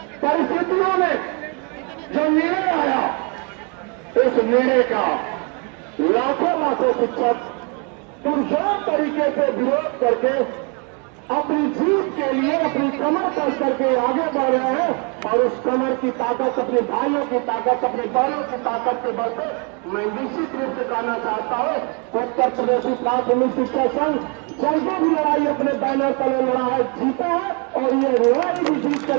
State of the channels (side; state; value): left; quieter; 35.1 dB